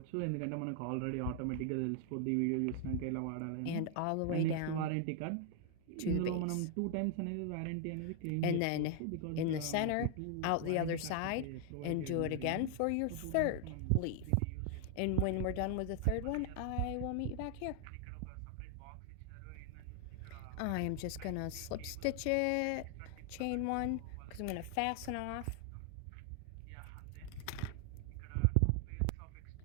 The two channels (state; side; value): different; both; correlation 0.00